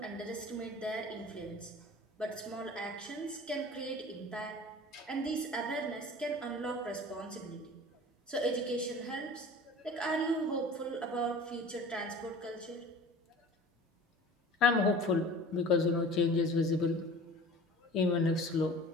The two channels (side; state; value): both; normal; correlation 0.42